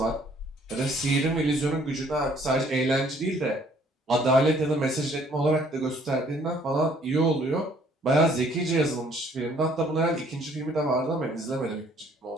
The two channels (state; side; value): normal; both; correlation 0.61